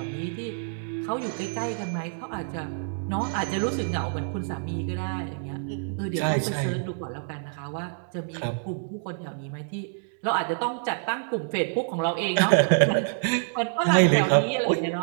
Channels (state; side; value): silent; left; digital silence